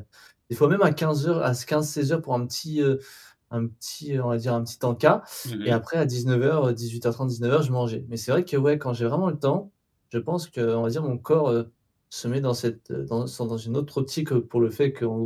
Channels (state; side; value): identical; both; correlation 1.00